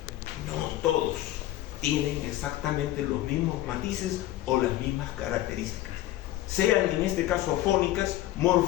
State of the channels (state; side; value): quieter; right; 14.9 dB